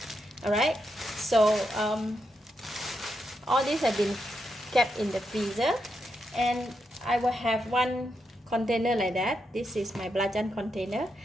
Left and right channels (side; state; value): both; normal; correlation 0.83